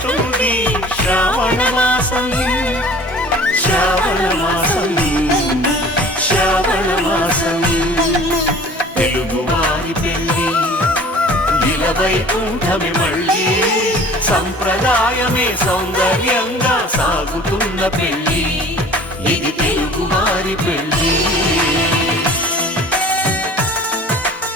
శ్రావణ మాసం శ్రావణ మాసం శ్రావణ మాసం తెలుగువారి పెళ్ళి ఇలవైకుంఠమే మళ్ళీ సంప్రదాయమే సౌందర్యంగా సాగుతున్న పెళ్ళి ఇది తెలుగువారి పెళ్ళి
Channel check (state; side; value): normal; both; correlation 0.46